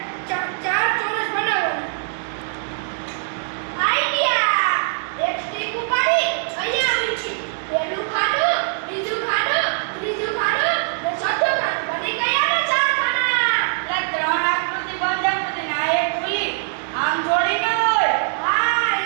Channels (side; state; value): left; silent; digital silence